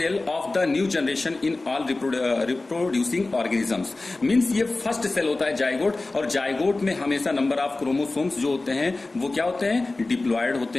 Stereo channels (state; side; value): quieter; right; 3.2 dB